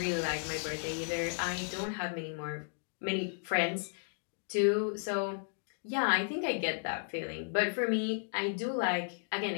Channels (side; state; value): right; silent; digital silence